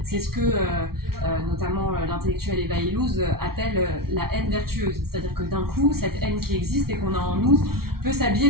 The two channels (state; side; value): late; left; 0.94 ms